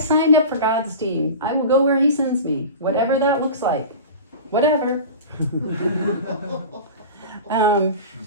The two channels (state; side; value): inverted; both; correlation -0.32